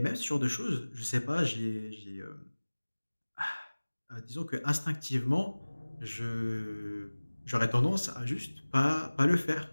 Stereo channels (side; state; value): both; inverted; correlation -1.00